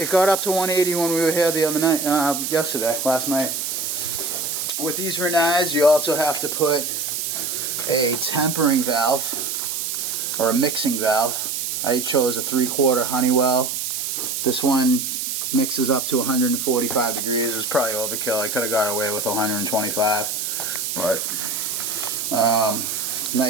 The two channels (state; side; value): noise; right; hiss, 3 dB below the sound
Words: got up to 180 when we were here the other night, last night. With these Rinnais, you also have to put a tempering valve or a mixing valve. I chose a 3/4 Honeywell. This one mixes up to 145 degrees. It was probably overkill. I could have got away with 125, but